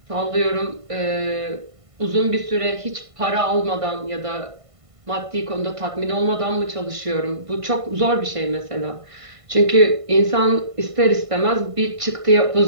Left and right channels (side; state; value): left; late; 1.5 ms